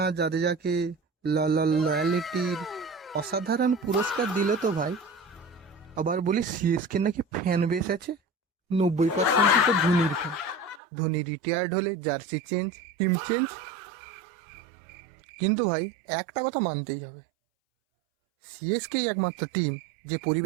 জাদেজাকে লয়ালিটির অসাধারণ পুরস্কার দিল তো ভাই। আবার বলি সিএসকে নাকি ফ্যান বেস আছে 90% তো ধোনির ফ্যান। ধোনি রিটায়ার্ড হলে জার্সি চেঞ্জ, টিম চেঞ্জ। কিন্তু ভাই একটা কথা মানতেই হবে, সিএসকেই একমাত্র টিম যে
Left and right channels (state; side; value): drops out; left; at 10.8 s